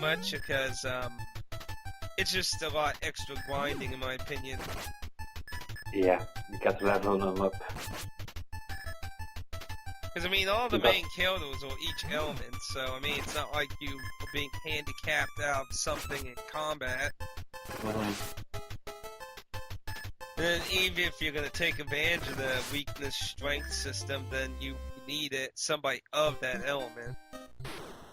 because it's just a lot extra grinding in my opinion. Yeah, you got to level them up. Because I mean, all the main characters are each element, so I mean, it's not like you are being handicapped out of something in combat. And then even if you're going to take advantage of the weakness strength system, then you need somebody of that element.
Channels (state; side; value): identical; both; correlation 1.00